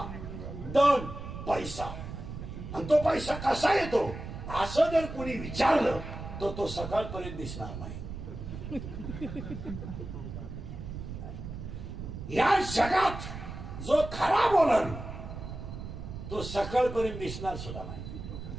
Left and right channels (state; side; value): noise; right; rumble, 9 dB below the sound